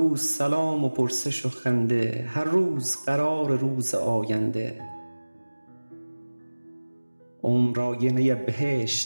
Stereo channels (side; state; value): both; inverted; correlation -1.00